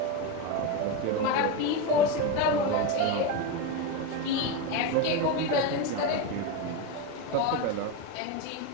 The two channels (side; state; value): both; different; correlation 0.06